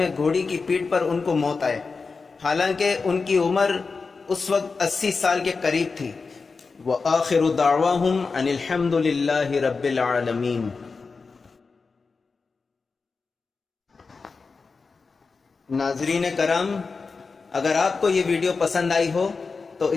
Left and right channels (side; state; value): right; quieter; 4.5 dB